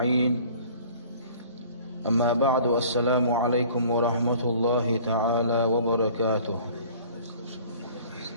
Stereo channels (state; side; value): inverted; both; correlation -0.50